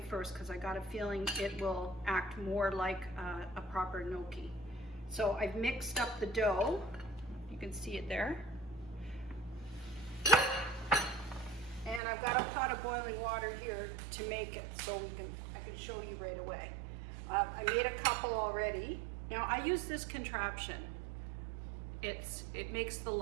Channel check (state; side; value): drops out; left; at 12.0 s